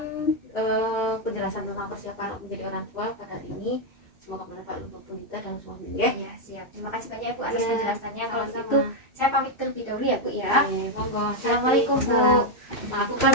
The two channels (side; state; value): right; late; 2.6 ms